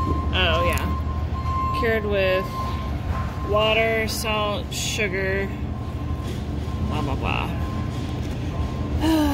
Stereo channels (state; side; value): identical; both; correlation 1.00